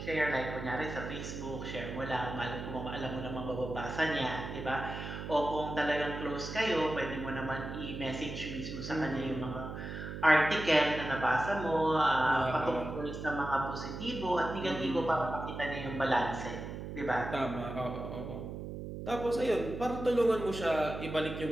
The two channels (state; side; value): noise; right; hum, 7 dB below the sound